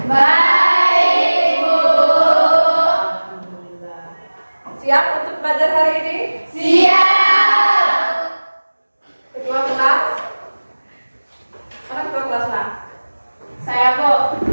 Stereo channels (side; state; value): both; inverted; correlation -1.00